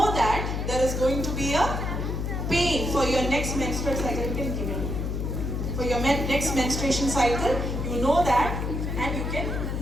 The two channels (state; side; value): noise; left; hum, 2 dB below the sound